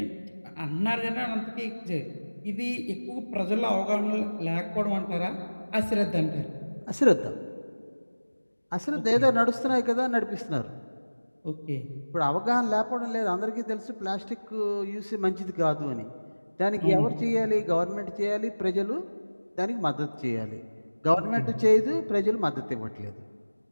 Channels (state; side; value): inverted; both; correlation -1.00